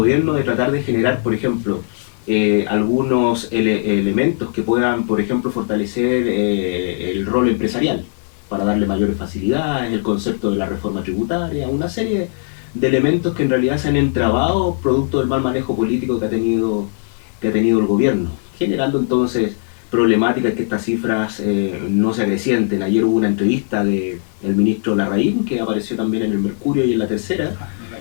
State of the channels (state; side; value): silent; right; 59 dB below the other